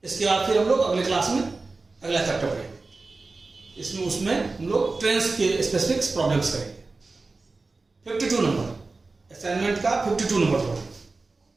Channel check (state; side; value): quieter; left; 3.7 dB